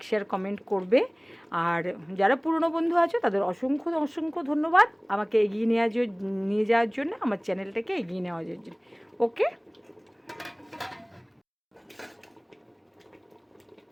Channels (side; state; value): both; identical; correlation 1.00